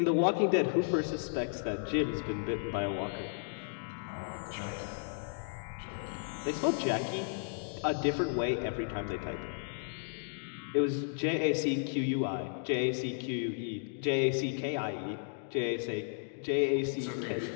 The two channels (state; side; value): silent; right; digital silence